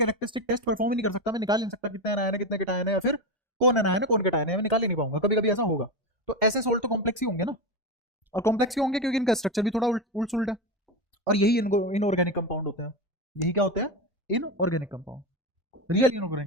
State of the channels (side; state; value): both; normal; correlation 0.16